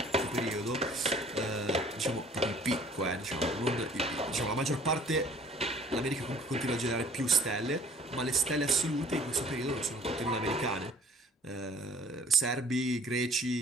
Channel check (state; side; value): normal; both; correlation 0.53